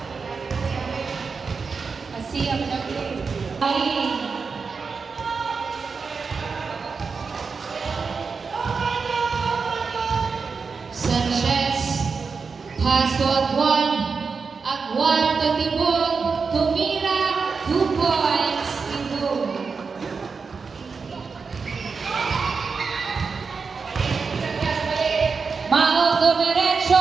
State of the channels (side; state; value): left; quieter; 5.0 dB